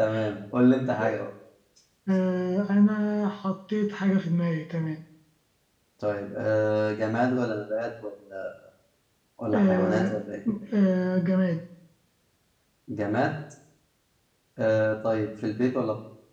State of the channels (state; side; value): identical; both; correlation 1.00